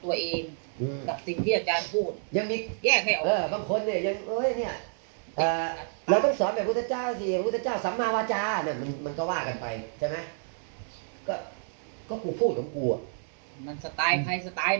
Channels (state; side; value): silent; left; 58 dB below the other